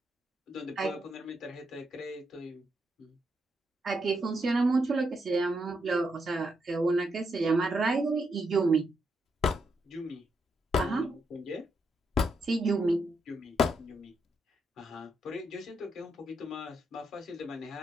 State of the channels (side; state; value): both; normal; correlation 0.81